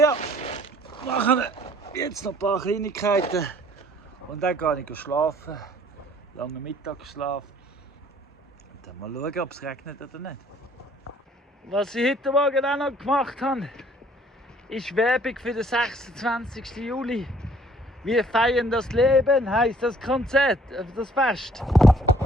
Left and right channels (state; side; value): normal; both; correlation 0.58